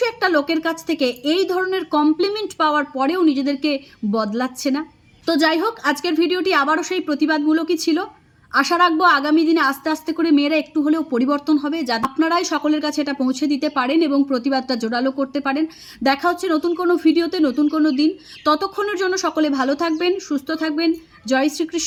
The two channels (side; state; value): both; identical; correlation 1.00